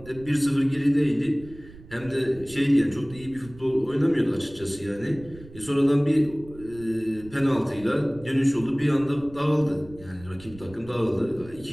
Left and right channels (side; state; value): right; noise; rumble, 19 dB below the sound